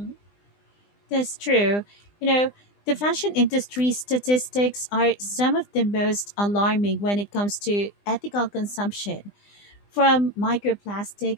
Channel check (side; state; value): right; late; 20 ms